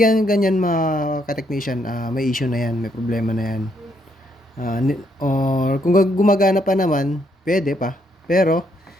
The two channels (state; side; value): normal; both; correlation 0.73